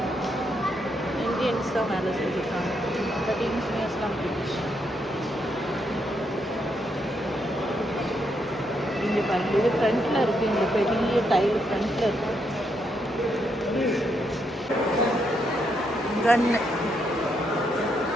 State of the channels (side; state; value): both; normal; correlation 0.78